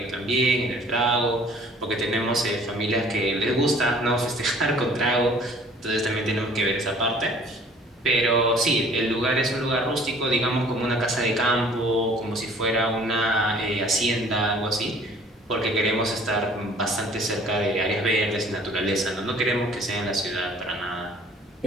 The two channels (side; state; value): both; normal; correlation 0.53